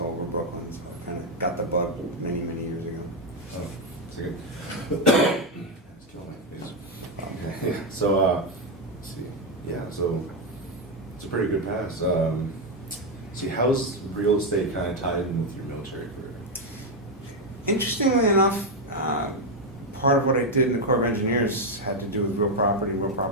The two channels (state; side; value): normal; both; correlation 0.04